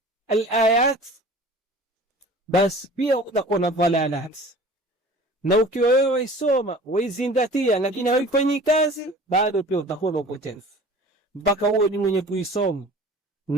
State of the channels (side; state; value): both; normal; correlation 0.44